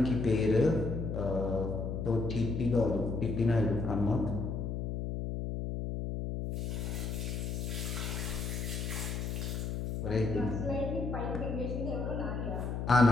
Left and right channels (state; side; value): noise; left; hum, 3 dB below the sound